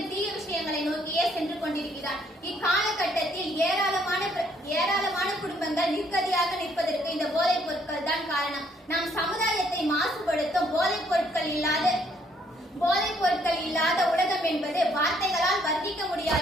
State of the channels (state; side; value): normal; both; correlation 0.67